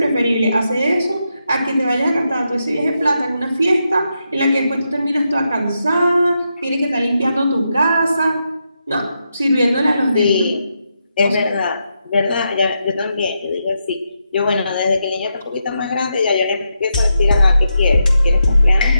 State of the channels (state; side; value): inverted; both; correlation -0.84